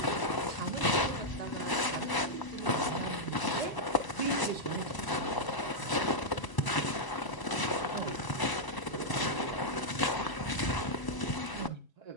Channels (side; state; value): right; late; 1.0 ms